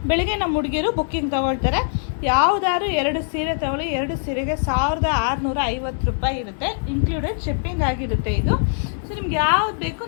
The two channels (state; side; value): silent; right; digital silence